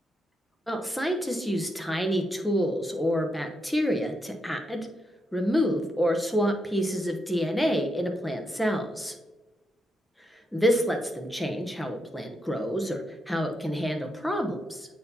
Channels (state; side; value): normal; both; correlation 0.82